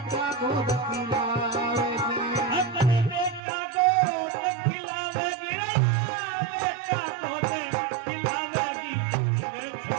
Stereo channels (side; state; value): left; drops out; at 3.4 s